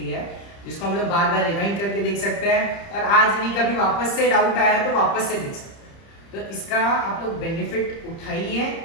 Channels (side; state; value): right; late; 30 ms